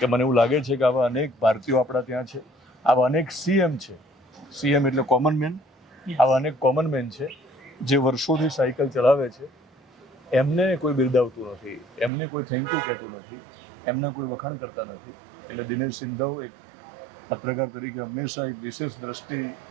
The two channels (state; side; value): drops out; left; at 12.1 s